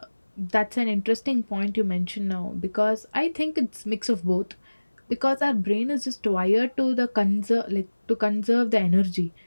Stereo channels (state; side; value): inverted; both; correlation -1.00